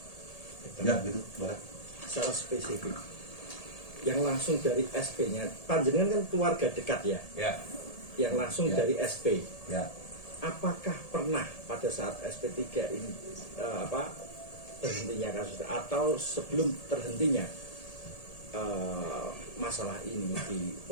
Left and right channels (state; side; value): late; right; 1.8 ms